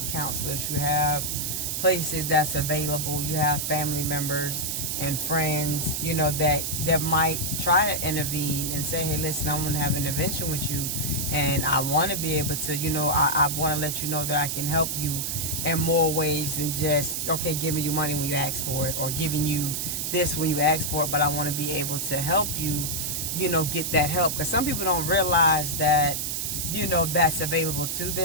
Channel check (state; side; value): noise; right; hiss, 2 dB below the sound